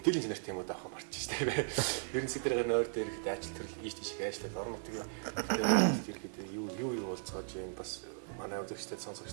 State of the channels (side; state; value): left; silent; 53 dB below the other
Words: чанарт юм уу даах марч штэ. Ерөн сэдвэр гарна ойр дээр ихэд ажил төрөл ийш тийш их ажиллаад орон нутгийн бүтээмэл болт ирэхэд юу болцоож байна. Бас манай үзэгчдэд